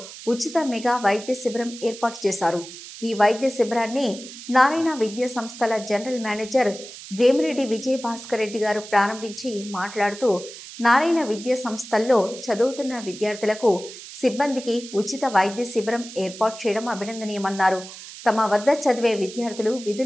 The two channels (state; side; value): noise; right; hiss, 14 dB below the sound